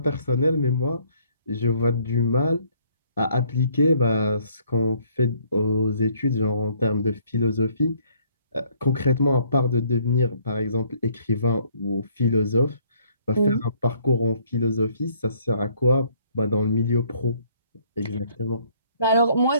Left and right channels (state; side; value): inverted; both; correlation -0.64